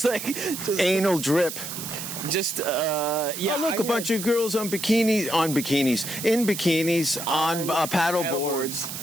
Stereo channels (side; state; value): right; noise; hiss, 7 dB below the sound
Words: like... Just, anal drip. Just, yeah. Oh, look, a bunch of girls in bikinis, on paddle boards.